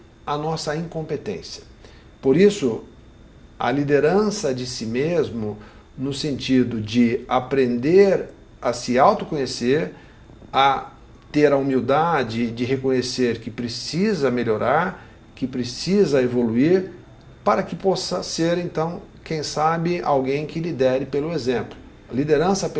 a nossa incompetência. Por isso, a liderança de si mesmo, no sentido de aprender a se autoconhecer, a ter a humildade de reconhecer que precisa melhorar, que precisa evoluir, para que possa ser, então, quem sabe, alguém que lidere pelo exemplo. A liderança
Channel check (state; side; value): identical; both; correlation 1.00